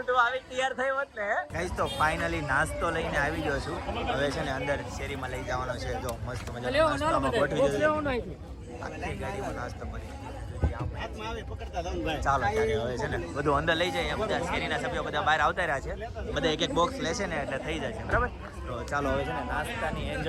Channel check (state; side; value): identical; both; correlation 1.00